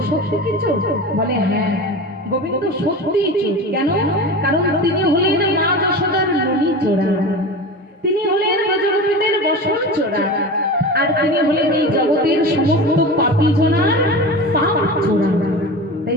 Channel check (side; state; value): both; normal; correlation 0.30